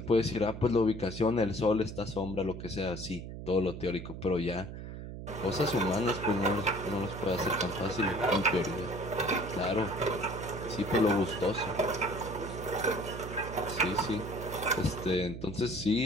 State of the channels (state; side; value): noise; right; hum, 9 dB below the sound